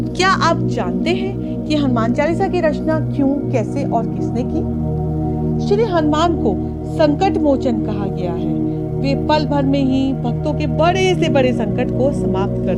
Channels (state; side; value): identical; both; correlation 1.00